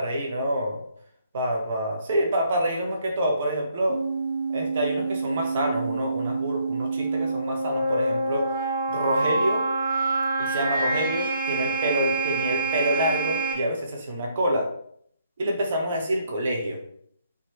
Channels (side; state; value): both; inverted; correlation -0.70